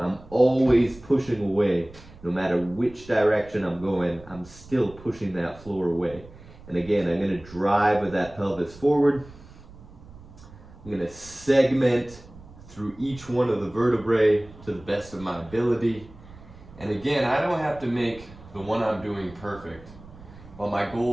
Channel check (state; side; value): noise; right; rumble, 20 dB below the sound